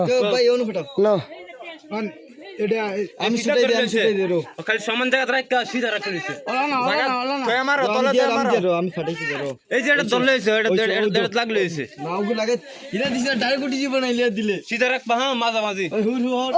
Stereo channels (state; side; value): identical; both; correlation 1.00